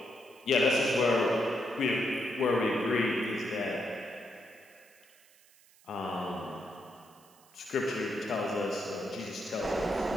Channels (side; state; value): right; noise; hiss, 28 dB below the sound